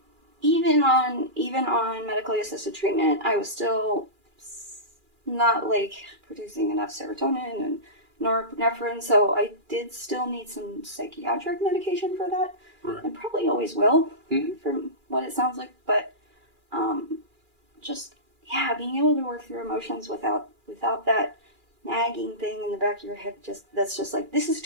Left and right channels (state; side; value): late; left; 2.4 ms